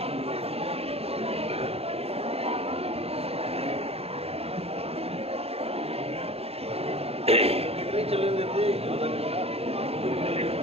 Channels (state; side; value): late; left; 0.29 ms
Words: चले देते आधा घंटा,